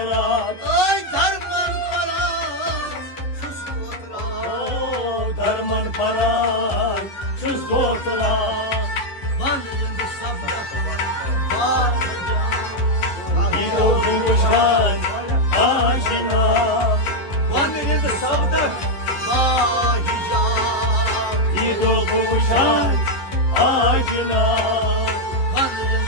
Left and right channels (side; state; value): right; late; 11 ms